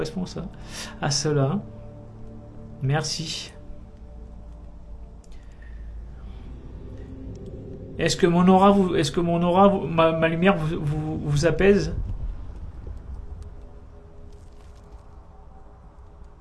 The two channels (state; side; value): identical; both; correlation 1.00